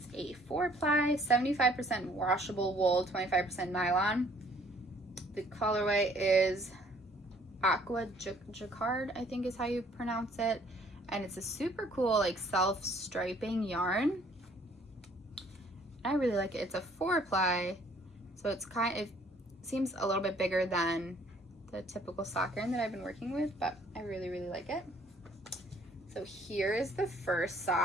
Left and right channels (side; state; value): both; normal; correlation 0.60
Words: a 4-ply, 75% washable wool, 25% nylon. The colorway is Aqua Jaquard, I think is how you pronounce it. And it's a super cool like self-striping yarn. I really like it. It's a 4-ply, so it seems a little bit bigger than the typical sock yarn that I've been working with, but I really, really like it. So here is the first